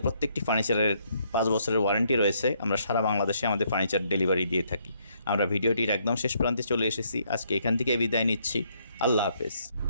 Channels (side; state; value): both; inverted; correlation -0.71